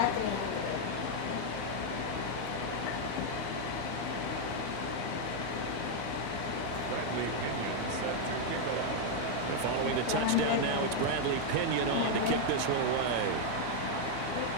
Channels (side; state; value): both; different; correlation 0.00